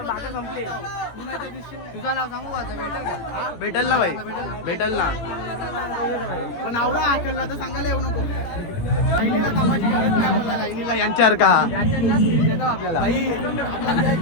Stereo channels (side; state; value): right; late; 17 ms